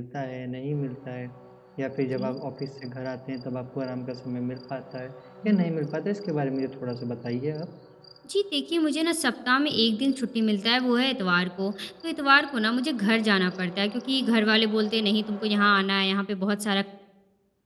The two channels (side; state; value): both; identical; correlation 1.00